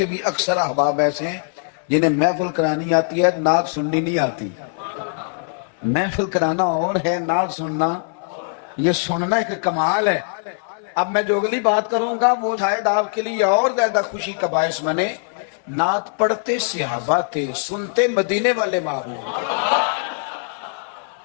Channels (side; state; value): right; silent; 64 dB below the other